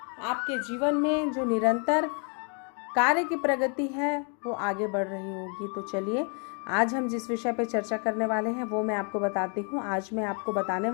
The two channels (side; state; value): right; quieter; 39.3 dB